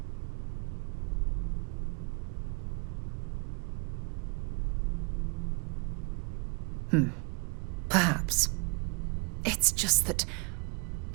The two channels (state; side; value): quieter; left; 33.4 dB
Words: Perhaps. It's just that...